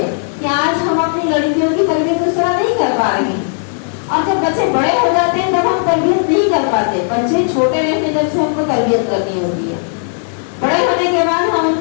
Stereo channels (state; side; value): silent; right; digital silence